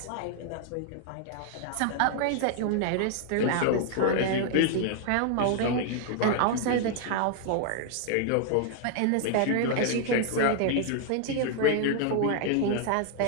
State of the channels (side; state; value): both; different; correlation 0.00